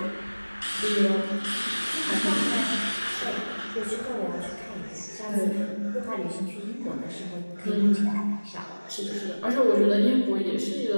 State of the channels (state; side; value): inverted; both; correlation -1.00